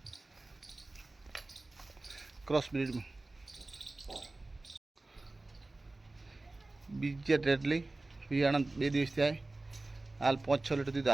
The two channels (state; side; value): quieter; left; 3.1 dB